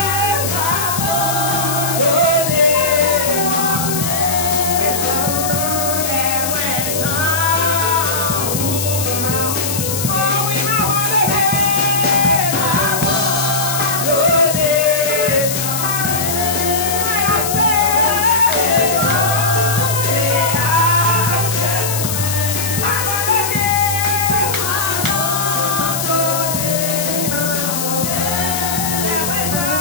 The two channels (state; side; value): noise; left; hiss, 3 dB below the sound